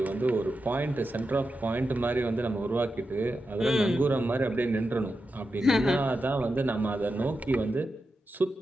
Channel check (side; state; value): both; normal; correlation 0.89